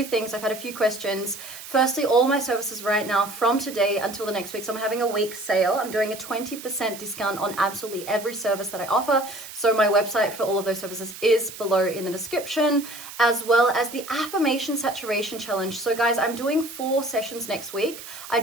things. I've had a few questions. Firstly, all my services right now from today until the next week. So I'm having a week sale. I'm doing a 20% discount on absolutely every service that I offer. So my website for all of those services is below in the description, as well as the affirmation saturation challenge. So guys, I'm doing 4 sessions next week. I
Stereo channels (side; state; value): right; noise; hiss, 13 dB below the sound